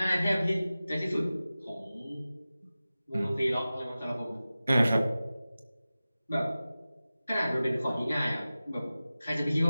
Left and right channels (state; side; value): inverted; both; correlation -0.96